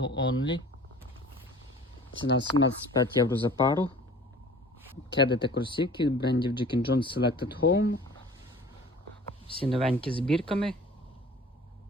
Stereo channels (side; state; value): both; normal; correlation 0.46